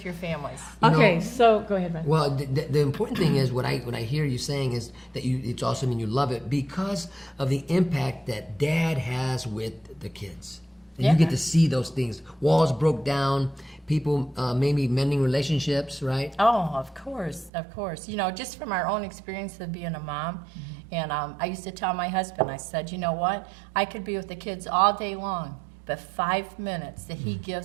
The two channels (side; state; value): left; drops out; at 17.5 s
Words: your families. You know- Okay, so go ahead, Beth. Well, the important thing is what I hear you saying is that it's awesome and you love it because of the impact that Dad has with the kids. And Yeah. you get to see those things. Walls broke down, people maybe mending relationships, right? Oh, of course, of course. You know, just from our own experience of being a mom, and I used to tell my husband, I said, you know what? I could be with the kids all day long, but 5 minutes that he